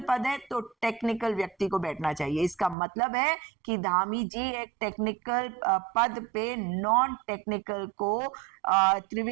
पद है तो टेक्निकल व्यक्ति को बैठना चाहिए। इसका मतलब है कि धामी जी एक टेक्निकल पद पे नॉन टेक्निकल को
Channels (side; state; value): left; drops out; at 2.8 s